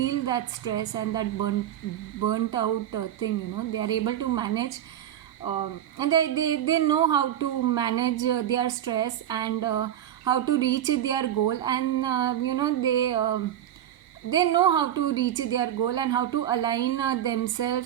that stress and that burnt out thing. They are able to manage, and they know how to manage their stress and how to reach their goal, and they know how to reach their goal and how to align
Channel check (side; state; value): left; quieter; 11.2 dB